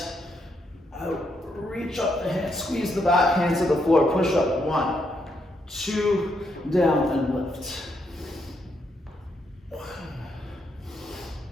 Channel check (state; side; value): normal; both; correlation 0.78